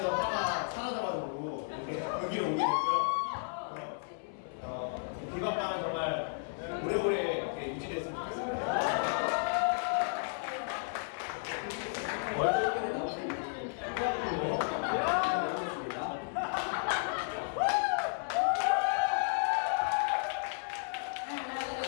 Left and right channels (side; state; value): right; silent; 56 dB below the other